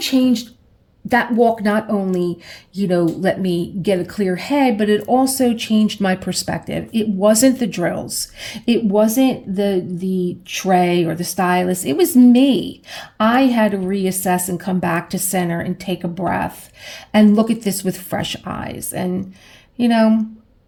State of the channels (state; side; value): identical; both; correlation 1.00